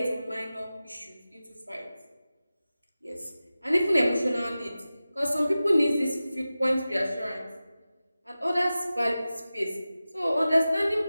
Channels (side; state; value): both; inverted; correlation -0.95